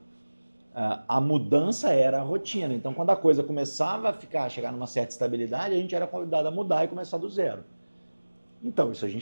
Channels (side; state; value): both; inverted; correlation -1.00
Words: a mudança era a rotina. Então, quando a coisa começava chegar numa certa estabilidade, a gente era convidado a mudar e começar do zero. Então, isso a